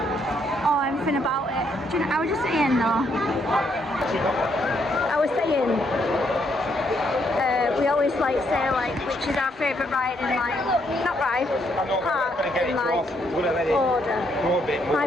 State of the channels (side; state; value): both; normal; correlation 0.73